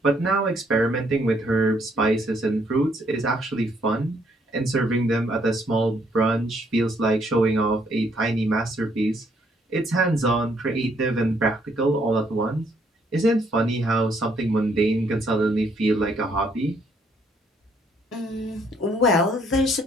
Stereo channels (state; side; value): normal; both; correlation 0.69